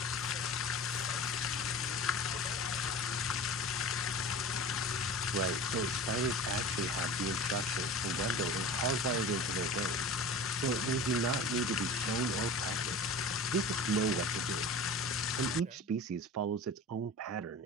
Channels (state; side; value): normal; both; correlation 0.35